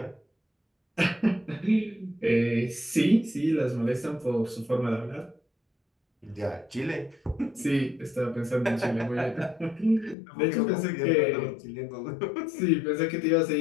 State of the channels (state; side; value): drops out; right; at 10.2 s